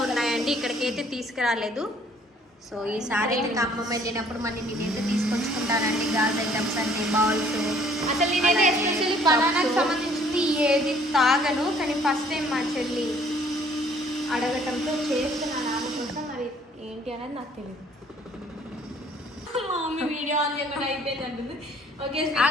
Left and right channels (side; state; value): both; normal; correlation 0.59